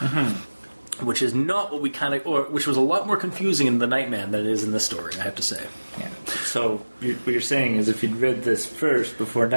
Which is not what we which was a lot more confusing in The Nightman than it is in this story, I have to say. Yeah. So what you're saying is if you'd read this first before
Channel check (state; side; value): inverted; both; correlation -1.00